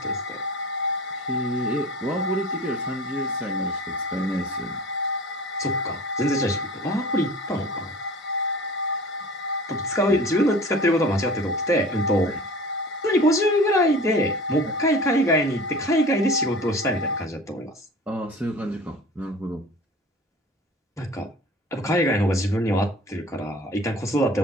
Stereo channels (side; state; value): both; normal; correlation 0.40